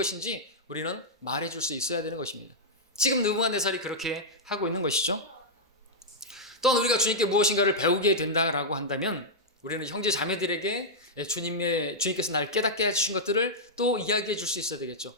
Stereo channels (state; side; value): normal; both; correlation -0.07